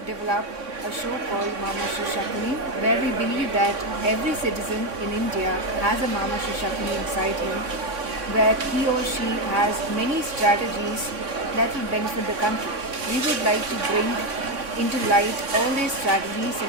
develop a show called Mamashri Shakuni, where we believe that every citizen in India has a Mamashri Shakuni inside him, where he or she has many strategies that will benefit the country. We would like to bring into light all these strategies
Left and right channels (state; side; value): late; left; 3.6 ms